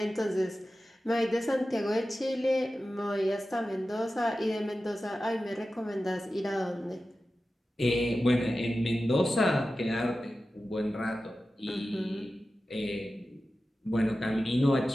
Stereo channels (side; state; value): both; normal; correlation 0.94